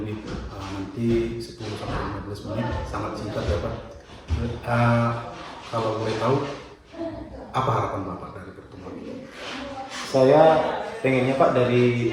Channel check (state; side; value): identical; both; correlation 1.00